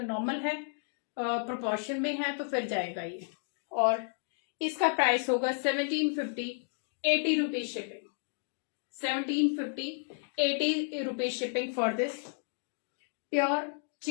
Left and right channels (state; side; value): silent; right; 56 dB below the other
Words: नॉर्मल है प्रोपोर्शन में है तो फिर जाएगा ये। और इसका प्राइस होगा 1750, 80 rupees shipping, 1750, 80 rupees shipping for this. Pure